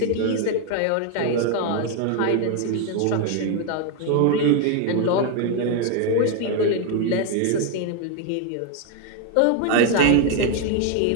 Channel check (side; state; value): both; different; correlation 0.01